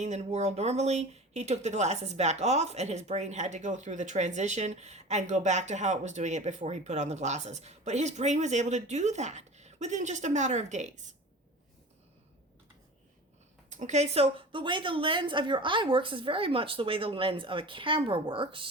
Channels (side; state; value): both; normal; correlation 0.36